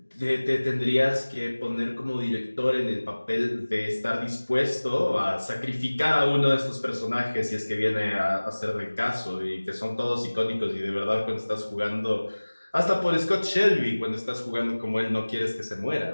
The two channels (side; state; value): both; inverted; correlation -1.00